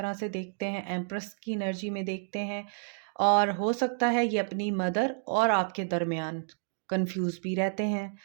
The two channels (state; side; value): silent; left; 58 dB below the other